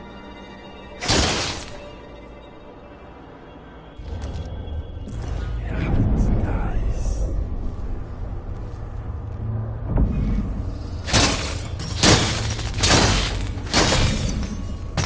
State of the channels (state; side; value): identical; both; correlation 1.00